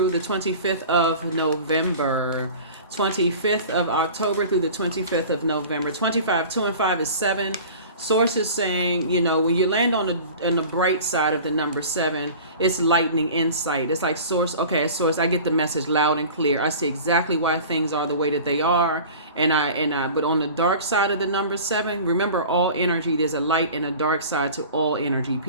the 25th of November. 25th of October through the 25th of November. 25, 2 and 5 is 7. Source is saying, when you land on the bright side of the number 7, it's lightning insight. It's like source, I get the message loud and clear. I see exactly why things are the way that they are. But on the dark side of the number 7, remember all energy, there's a light and a dark side to all energy,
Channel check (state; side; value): inverted; both; correlation -0.40